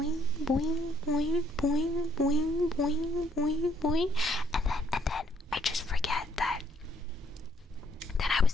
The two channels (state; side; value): normal; both; correlation 0.68